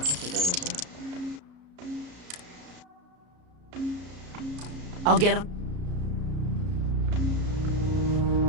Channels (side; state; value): left; late; 33 ms